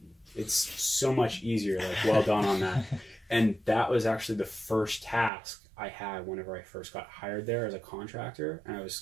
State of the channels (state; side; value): drops out; left; at 5.3 s